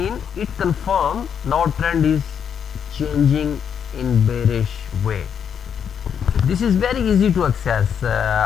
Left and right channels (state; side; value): quieter; right; 7.8 dB